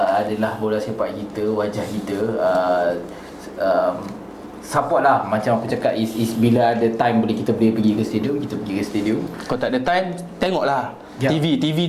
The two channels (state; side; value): identical; both; correlation 1.00